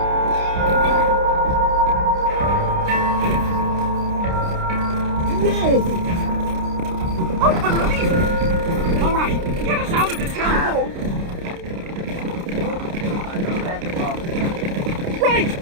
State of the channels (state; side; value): late; left; 29 ms